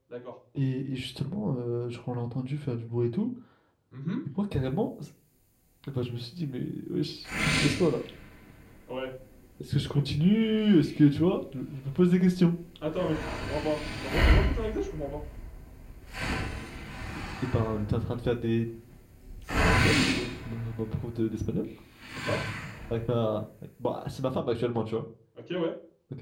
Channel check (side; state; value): both; identical; correlation 1.00